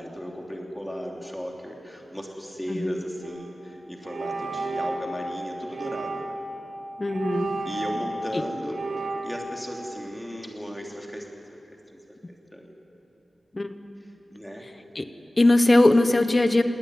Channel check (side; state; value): both; normal; correlation 0.97